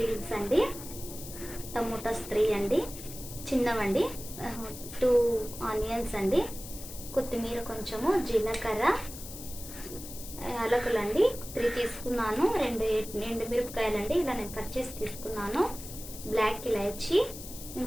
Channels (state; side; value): noise; left; hiss, 12 dB below the sound